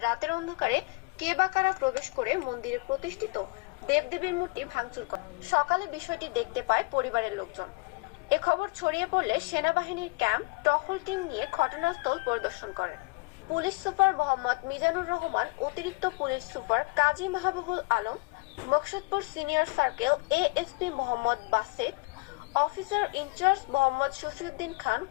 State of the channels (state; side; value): quieter; right; 26.8 dB